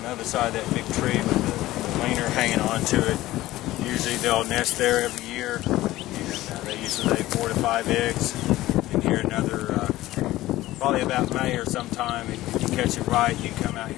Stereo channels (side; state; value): right; quieter; 16.4 dB